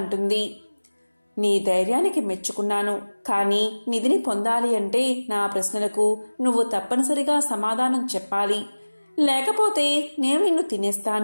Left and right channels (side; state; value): both; inverted; correlation -1.00